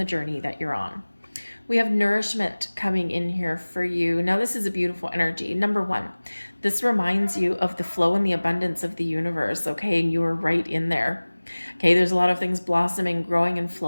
journey that you're on. We have nourishment coming in here for you. Now, this is a beautiful energy. Number one, this reminds you of the flow and the abundance of the universe, okay? And you are right in there. Okay, there's a lot of things blossoming, growing, and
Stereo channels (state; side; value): inverted; both; correlation -1.00